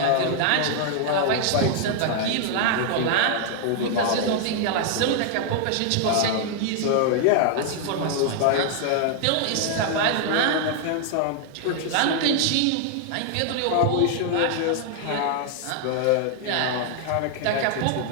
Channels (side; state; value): both; different; correlation 0.00